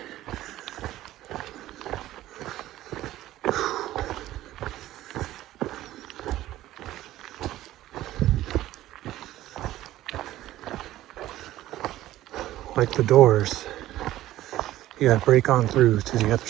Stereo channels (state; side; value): quieter; left; 14.7 dB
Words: like the doors, you gotta break on through to the other